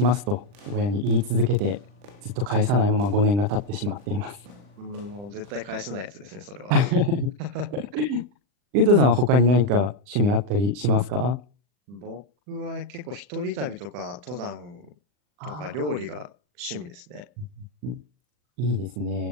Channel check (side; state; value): left; late; 40 ms